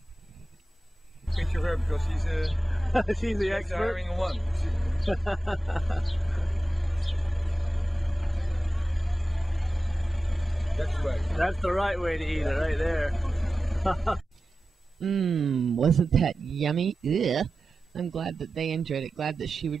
Picture her because she's She's the expert. hiring one. That's right. That's the right way to eat it, right there. Wasn't that yummy? Ugh. I'm glad that they enjoyed it. Glad that she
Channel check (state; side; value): normal; both; correlation 0.93